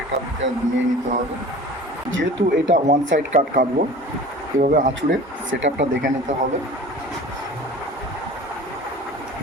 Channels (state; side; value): normal; both; correlation 0.41